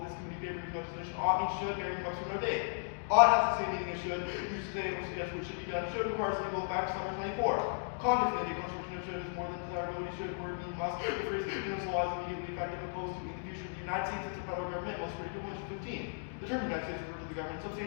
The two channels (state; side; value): silent; right; digital silence